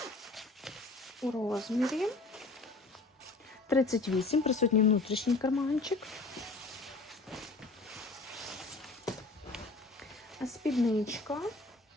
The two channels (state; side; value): quieter; right; 3.3 dB